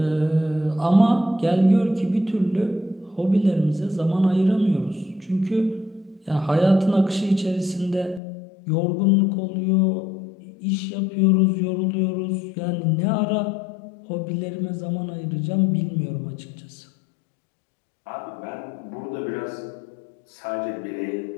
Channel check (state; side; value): drops out; right; at 8.2 s